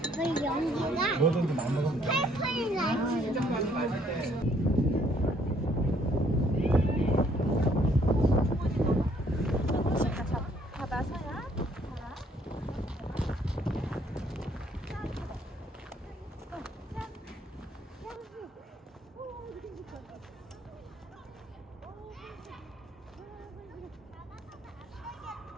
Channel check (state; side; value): normal; both; correlation 0.65